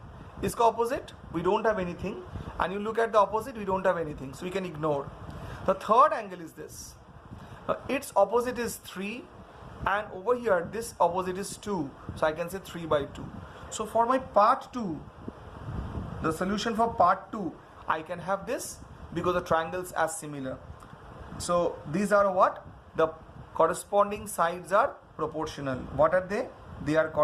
Iska opposite, we don't have anything, and you look at the opposite, we don't have anything, so we can ignore. The third angle is this. Its opposite is 3, and over here this opposite is 2, so I can say 3 by 2. So for my part 2, the solution for part 2, I can have this because the triangles are similar. So these are what? The corresponding sides are proportional. What are they? They are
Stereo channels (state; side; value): identical; both; correlation 1.00